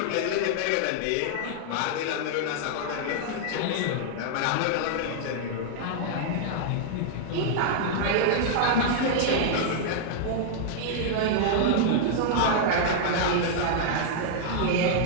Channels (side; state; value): both; different; correlation -0.01